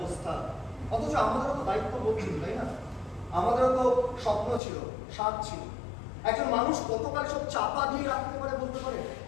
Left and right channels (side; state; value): right; drops out; at 4.6 s